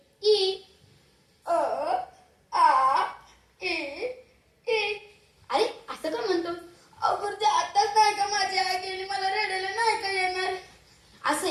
ई. अ आ ई ई. अरे असं का म्हणतो? अगं ते आताच नाही का माझी आई गेली, मला रडायला नाही का येणार. असं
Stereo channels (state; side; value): identical; both; correlation 1.00